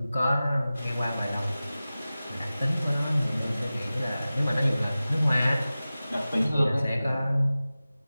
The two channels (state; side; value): inverted; both; correlation -0.96